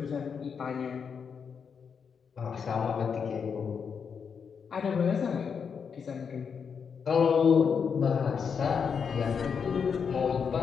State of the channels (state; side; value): quieter; right; 6.4 dB